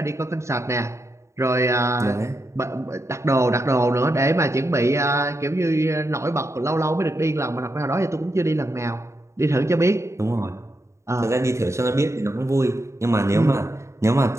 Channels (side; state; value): left; late; 0.14 ms